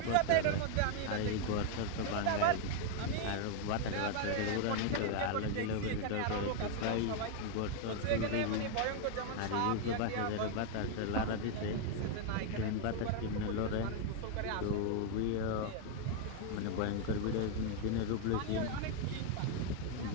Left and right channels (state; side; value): different; both; correlation 0.00